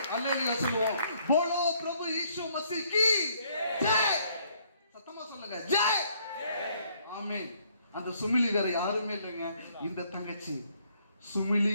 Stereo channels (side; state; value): both; inverted; correlation -0.66